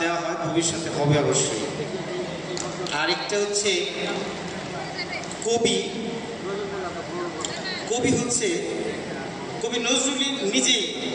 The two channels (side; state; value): left; noise; hum, 29 dB below the sound